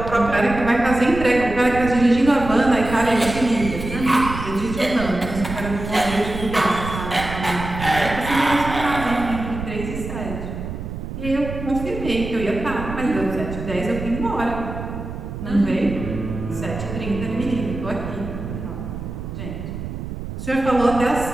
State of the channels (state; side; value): noise; right; rumble, 8 dB below the sound